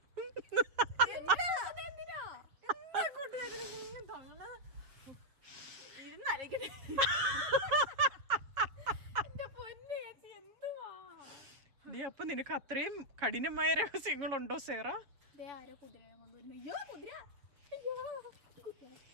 അപ്പൊ നിനക്ക് അത്രയും കഠിനമായ രഹസ്യങ്ങളുണ്ടോ സേറ?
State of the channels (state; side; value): late; left; 7.3 ms